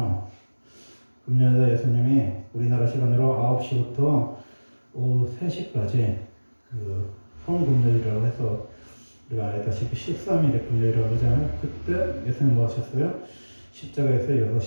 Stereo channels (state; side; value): inverted; both; correlation -1.00